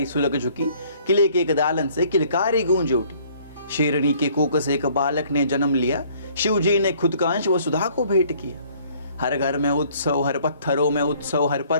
सुलग झुकी, किले के एक दालन से किलकारी गूंज उठी। शेरनी के कोक से एक बालक ने जन्म लिया, शिव जी ने खुद का अंश वसुधा को भेंट किया। हर घर में उत्सव, हर पत्थरों में उत्सव, हर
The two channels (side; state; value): both; inverted; correlation -0.59